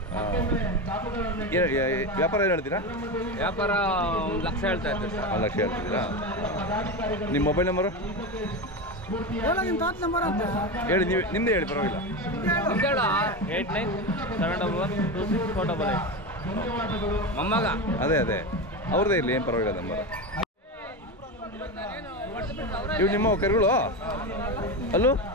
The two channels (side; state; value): both; normal; correlation 0.19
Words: ವ್ಯಾಪಾರ ಏನು ಹೇಳ್ತೀರಾ? ವ್ಯಾಪಾರ 1 ಲಕ್ಷ ಹೇಳ್ತಾ ಇದ್ದೀವಿ ಸರ್. 1 ಲಕ್ಷ ಹೇಳ್ತಿದ್ದೀರಾ? ನಿಮ್ಮ ಮೊಬೈಲ್ ನಂಬರು ಹೇಳಿ, ನೀವು ನಿಮ್ಮದೇ ಹೇಳಿ, ಪರವಾಗಿಲ್ಲ. 89712648. ಮೊಮ್ಮಗ. ಅದೇ ಅದೇ ಅವ್ರದ್ದೇ ಇರಲಿ, ಏನು ಪರವಾಗಿಲ್ಲ ನಂಬರ್. ಇವು ನಿಮ್ಮ ಕರುಗಳು ಅಲ್ಲೂ